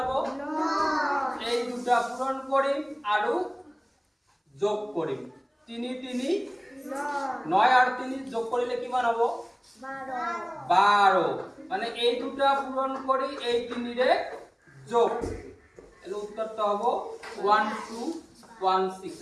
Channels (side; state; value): both; identical; correlation 1.00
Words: 9 এই দুটা পূৰণ কৰিম আৰু যোগ কৰিম 3 3 9 আৰ 3 যোগ কৰিলে কিমান হ'ব 12 মানে এই দুটা পূৰণ কৰি এই 3 ৰে যোগ এৰ উত্তৰটা হ'ব 1216